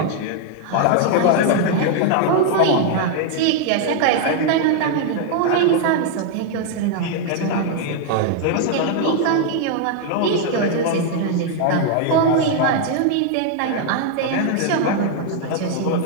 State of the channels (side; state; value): both; different; correlation 0.00